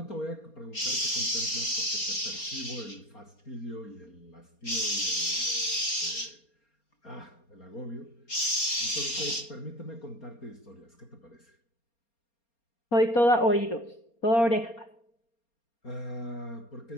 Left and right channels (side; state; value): right; late; 4.3 ms